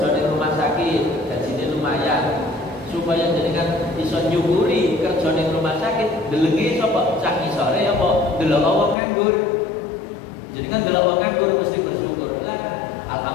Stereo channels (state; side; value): drops out; right; at 9.0 s